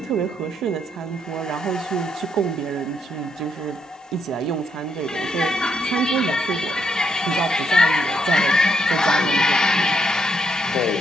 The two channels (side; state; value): both; normal; correlation 0.76